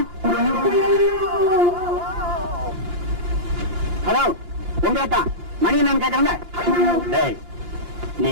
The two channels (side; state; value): left; late; 5.7 ms